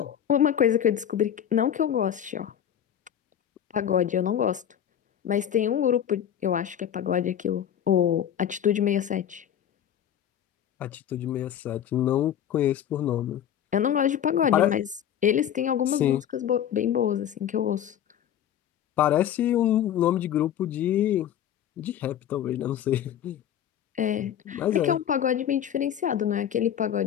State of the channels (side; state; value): right; quieter; 10.0 dB